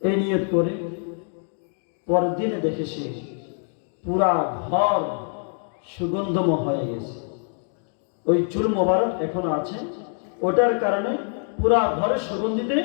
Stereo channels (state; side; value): silent; right; 58 dB below the other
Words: এই নিয়ত করে পরের দিনে দেখে সে পুরা ঘর সুগন্ধময় হয়ে গেছে। ওই চুল মোবারক এখনো আছে, ওটার কারণে পুরা ঘরে